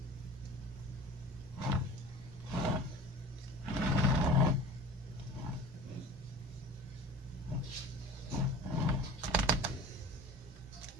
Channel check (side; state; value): both; normal; correlation 0.41